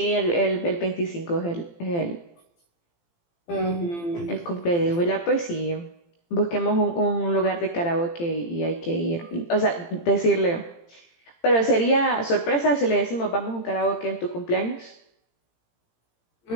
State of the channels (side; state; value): right; late; 18 ms